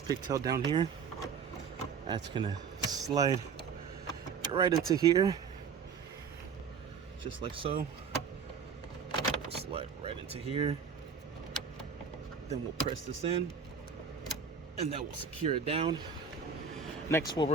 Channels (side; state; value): left; quieter; 6.3 dB